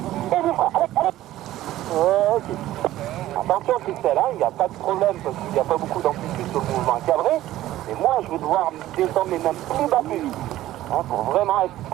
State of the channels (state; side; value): quieter; left; 14.7 dB